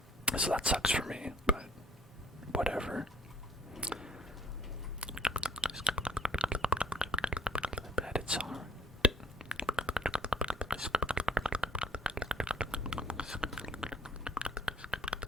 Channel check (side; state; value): both; normal; correlation 0.59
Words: So that sucks for me, but whatever. Bet it's alright.